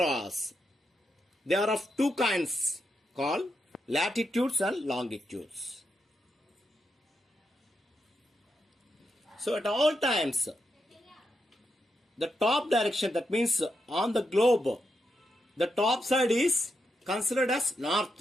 They are of two kinds called latitudes and longitudes. So at all times, the top direction, that means on the globe, the top side is considered as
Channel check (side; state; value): both; normal; correlation 0.83